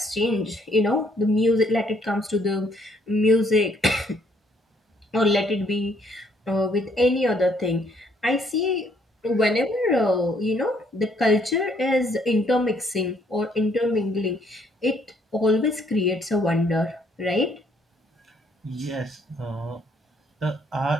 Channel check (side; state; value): both; normal; correlation 0.67